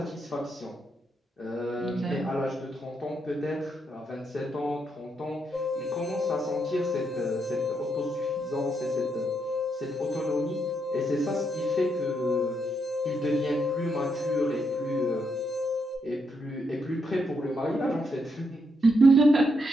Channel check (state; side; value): normal; both; correlation 0.79